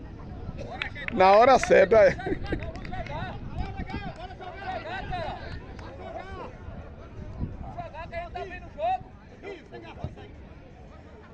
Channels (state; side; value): identical; both; correlation 1.00